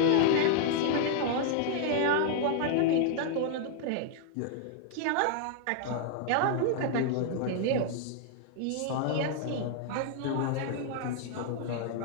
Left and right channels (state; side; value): different; both; correlation -0.01